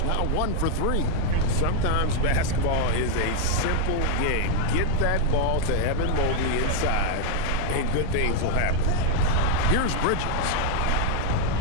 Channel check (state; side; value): different; both; correlation 0.00